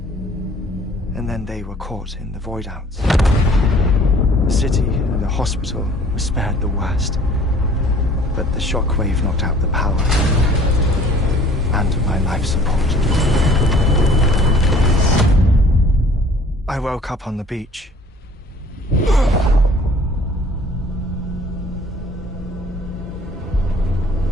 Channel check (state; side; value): normal; both; correlation 0.52